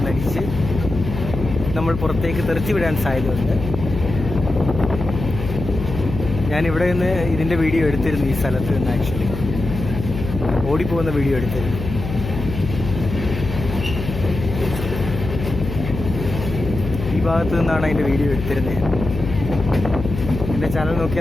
നമ്മൾ പുറത്തേക്ക് തെറിച്ച് വിടാൻ സാധ്യതയുണ്ട്. ഞാനിവിടെ നിന്ന് ഇതിൻ്റെ വീഡിയോ എടുത്തിരുന്നു. ഈ സ്ഥലത്ത് നിന്ന് ആക്ച്വലി ഓടിപ്പോകുന്ന വീഡിയോ എടുത്തിരുന്നു. ഈ ഭാഗത്ത് നിന്നാണ് അതിൻ്റെ വീഡിയോ എടുത്തിരുന്നത്. എൻ്റെ ചാനൽ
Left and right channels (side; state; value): left; noise; hum, 6 dB below the sound